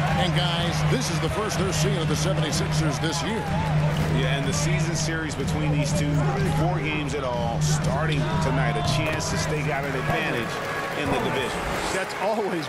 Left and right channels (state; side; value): identical; both; correlation 1.00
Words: And, guys, this is the first they're seeing of the 76ers this year. Yeah, and the season series between these two, 4 games at all, starting tonight, a chance to stake out an advantage in the division. That's always